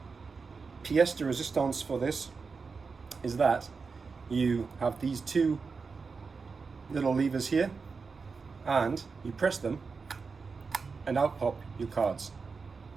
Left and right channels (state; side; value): quieter; left; 4.8 dB